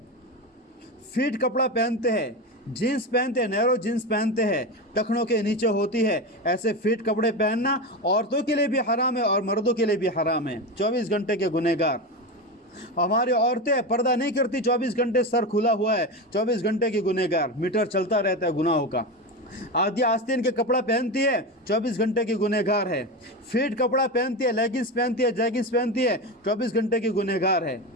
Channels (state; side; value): normal; both; correlation 0.19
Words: फिट कपड़ा पहनते हैं, जीन्स पहनते हैं, नैरो जीन्स पहनते हैं, टखनों के नीचे होती है। ऐसे फिट कपड़े पहनना औरतों के लिए भी हराम है और मर्दों के लिए भी हराम है। 24 घंटे के गुनहगार। हमारी औरतें पर्दा नहीं करती, 24 घंटे सर खुला हुआ है, 24 घंटे की गुनहगार। मीटर चलता रहता है गुनाहों का। आधी आस्तीन के कपड़ा पहनती है, 24 घंटे की गुनहगार है। फिट कपड़ा पहनती है, लेगिंग्स पहनती है, जैगिंग्स पहनती है, 24 घंटे की गुनहगार है।